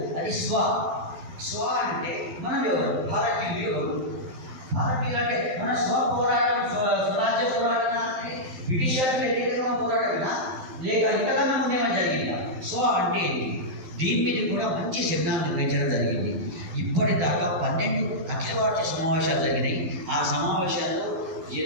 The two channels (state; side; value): late; left; 12 ms